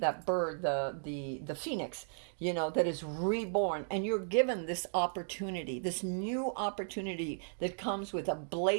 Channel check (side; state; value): left; silent; digital silence